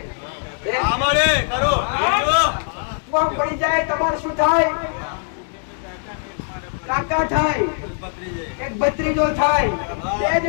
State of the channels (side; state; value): right; silent; digital silence